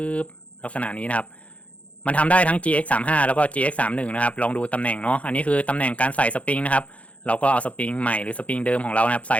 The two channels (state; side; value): late; right; 0.065 ms